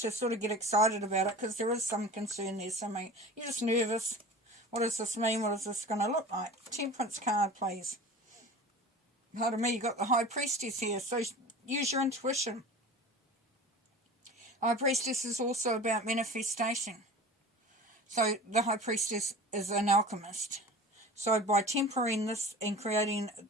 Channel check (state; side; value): normal; both; correlation 0.37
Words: sort of get excited about it, because there is some concern there. Something, you're just nervous. What does this mean? What is this going to look like? Temperance card, please. Pardon me, you got the High Priestess here, so use your intuition. High Priestess is also about manifestation. So the High Priestess is an alchemist. So by tempering this and